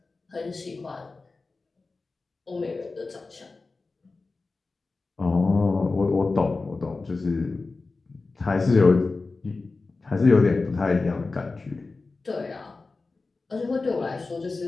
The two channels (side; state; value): right; quieter; 3.8 dB